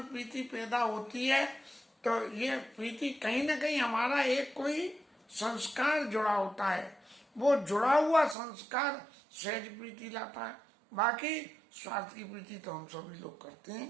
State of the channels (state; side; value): drops out; left; at 8.3 s